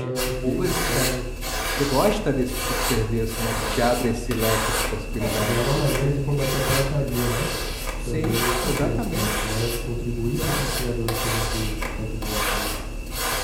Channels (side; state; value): both; identical; correlation 1.00